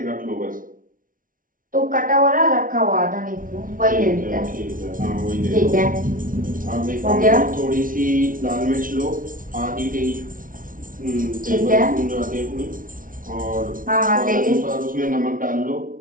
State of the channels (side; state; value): left; late; 0.39 ms